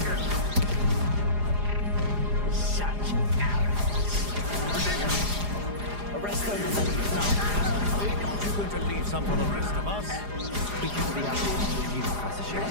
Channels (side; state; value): left; late; 4.9 ms